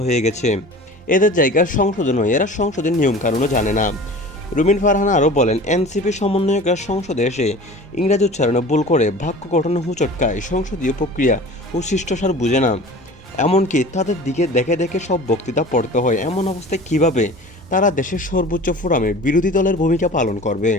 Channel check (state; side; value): normal; both; correlation 0.40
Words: হয়ে গেছে। এদের জায়গা সংসদে নয়, এরা সংসদের নিয়মকানুনও জানে না। রুমিন ফারহানা আরও বলেন, এনসিপি সমন্বয়করা সংসদে এসে ইংরেজি উচ্চারণে ভুল করে বাক্য গঠনে হুঁচটকায়, সংসদীয় প্রক্রিয়া ও শিষ্টাচার বুঝে না। এমনকি তাদের দিকে দেখে দেখে সব বক্তৃতা পড়তে হয়। এমন অবস্থায় কিভাবে তারা দেশের সর্বোচ্চ ফোরামে বিরোধী দলের ভূমিকা পালন করবে?